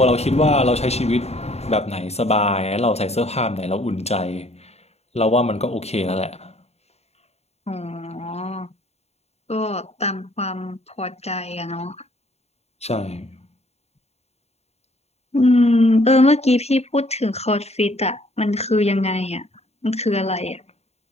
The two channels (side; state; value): right; late; 0.31 ms